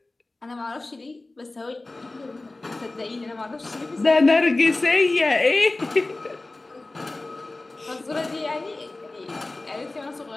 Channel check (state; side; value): quieter; right; 3.0 dB